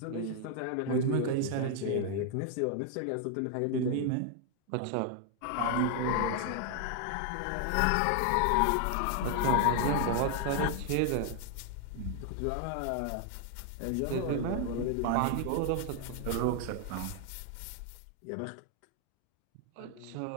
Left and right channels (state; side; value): different; both; correlation 0.00